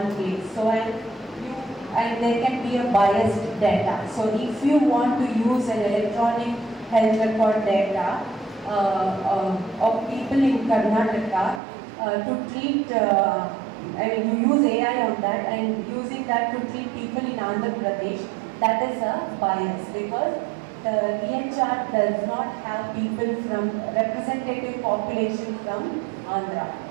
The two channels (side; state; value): left; drops out; at 11.6 s